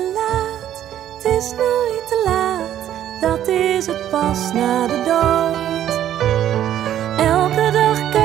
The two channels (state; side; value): quieter; left; 11.3 dB